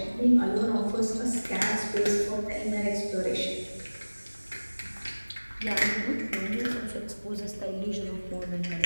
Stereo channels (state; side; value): inverted; both; correlation -1.00